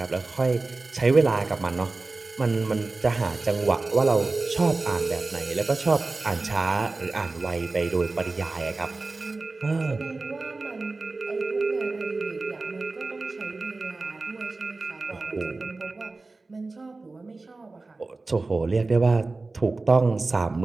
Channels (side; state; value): left; quieter; 3.5 dB